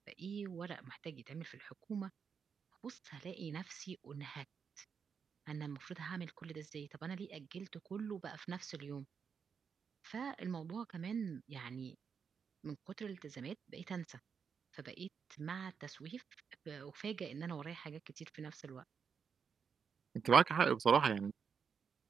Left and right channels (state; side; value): quieter; left; 6.5 dB